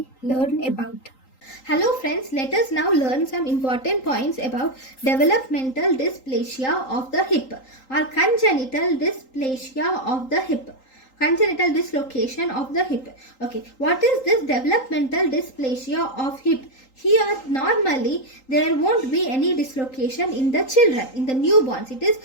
learn about. Hello friends, let us now learn some important points about developmental dysplasia of the hip or congenital dysplasia of the hip. Congenital dislocation of the hip. Okay, what is this developmental dysplasia of hip? Here normally there won't be any dislocation in the children, in the newborns. It is,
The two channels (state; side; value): late; right; 3.8 ms